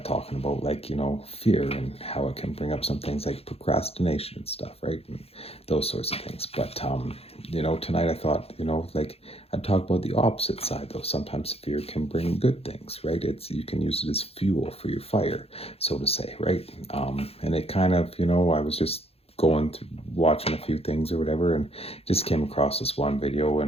talking about fear and how it can bring up some things like procrastination and stuff, right? And those sorts of things. But tonight I thought, I'd talk about the opposite side though. Sometimes fear can bring good things, right? It's you can use it as fuel for your fire, so to say, right? And it kind of, I was just going through watching a few things or whatever, and just came across this one video,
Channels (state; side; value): late; right; 0.29 ms